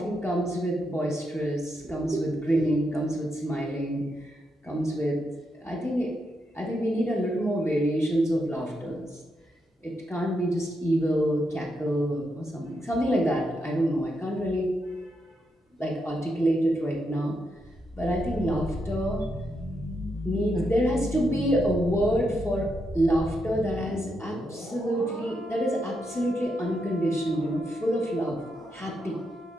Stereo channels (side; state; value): both; normal; correlation 0.82